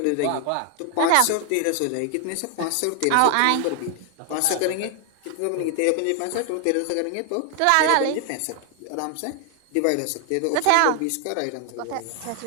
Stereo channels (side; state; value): both; different; correlation 0.00